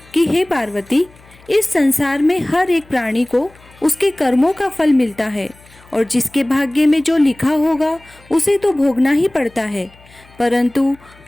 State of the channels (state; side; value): noise; left; hum, 26 dB below the sound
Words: कि हे पार्वती, इस संसार में हर एक प्राणी को उसके कर्मों का फल मिलता है और जिसके भाग्य में जो लिखा होगा उसे तो भोगना ही पड़ता है। परंतु